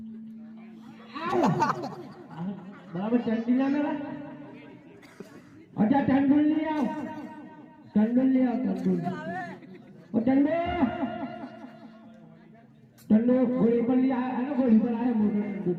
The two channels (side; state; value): both; identical; correlation 1.00